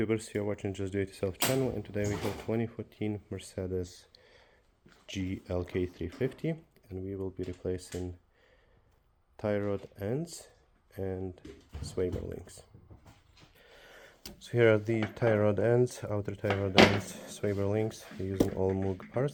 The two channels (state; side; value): identical; both; correlation 1.00